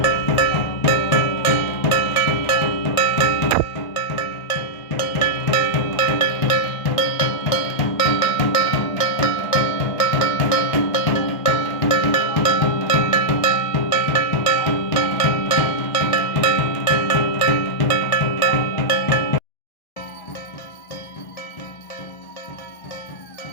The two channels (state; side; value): late; right; 1.4 ms